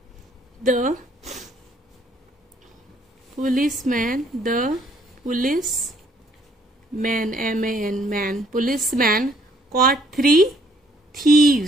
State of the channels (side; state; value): both; normal; correlation 0.65